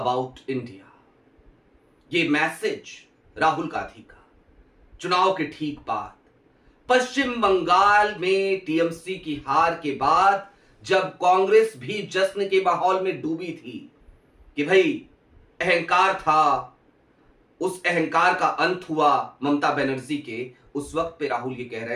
India. ये मैसेज राहुल गांधी का चुनाव के ठीक बाद पश्चिम बंगाल में टीएमसी की हार के बाद, जब कांग्रेस भी जश्न के माहौल में डूबी थी कि भाई अहंकार था, उस अहंकार का अंत हुआ ममता बनर्जी के, उस वक्त पे राहुल ये कह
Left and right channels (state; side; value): identical; both; correlation 1.00